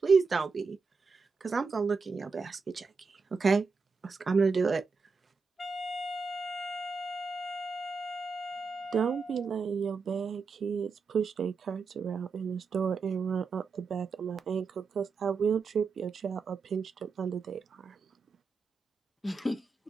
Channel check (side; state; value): left; quieter; 4.7 dB